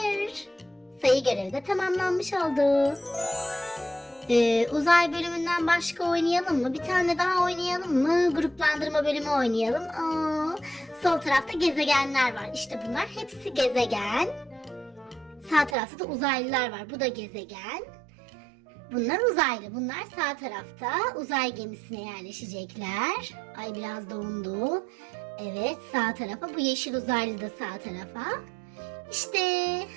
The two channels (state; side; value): drops out; left; at 15.8 s